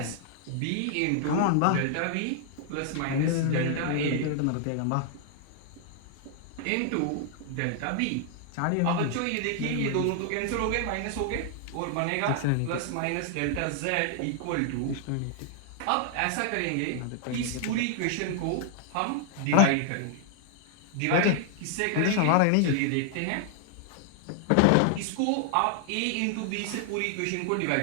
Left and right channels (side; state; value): both; different; correlation 0.00